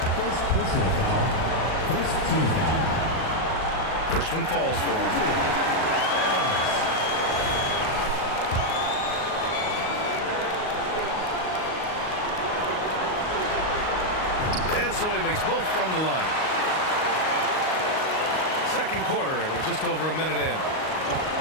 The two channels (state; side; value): late; right; 38 ms